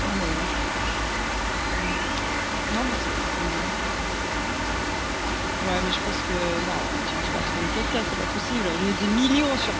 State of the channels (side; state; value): both; identical; correlation 1.00